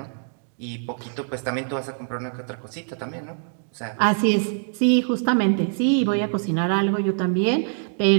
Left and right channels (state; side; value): silent; left; 63 dB below the other